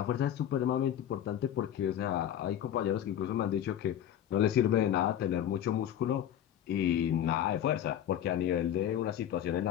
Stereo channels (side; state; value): right; quieter; 10.6 dB